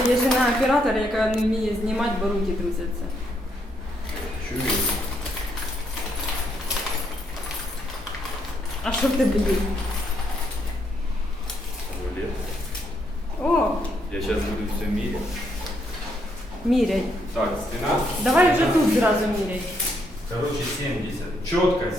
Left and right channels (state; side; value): normal; both; correlation 0.74